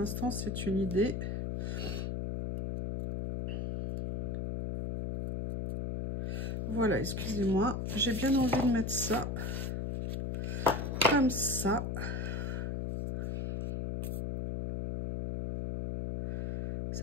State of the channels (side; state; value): left; noise; hum, 2 dB below the sound